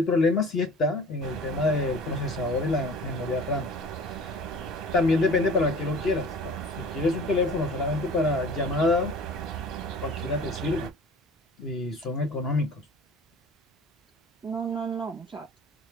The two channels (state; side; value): normal; both; correlation 0.43